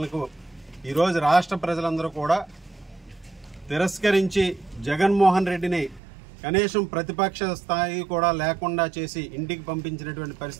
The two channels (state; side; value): drops out; left; at 6.0 s